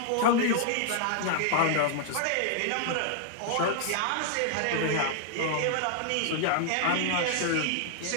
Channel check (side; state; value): both; different; correlation 0.00